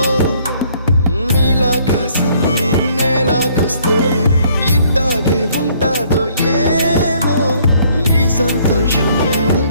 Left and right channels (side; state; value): both; inverted; correlation -0.63